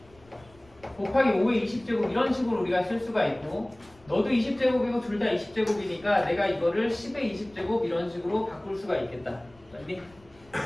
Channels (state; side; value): noise; left; rumble, 28 dB below the sound